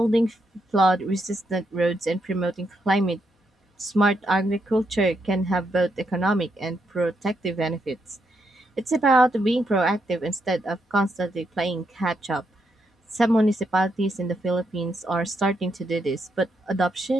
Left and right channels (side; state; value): both; normal; correlation 0.80